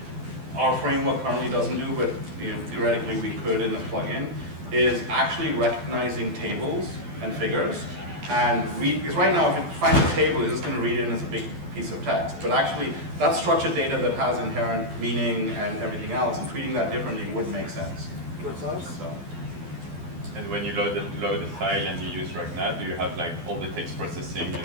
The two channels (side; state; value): left; late; 12 ms